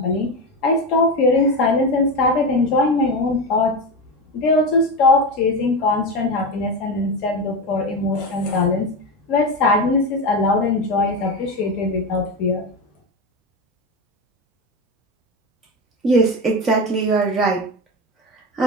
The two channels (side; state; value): both; normal; correlation 0.18